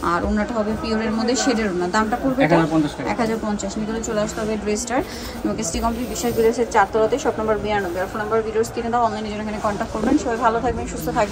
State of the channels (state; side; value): identical; both; correlation 1.00